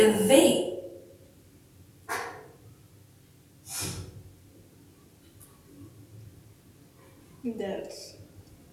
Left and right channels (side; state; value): both; identical; correlation 1.00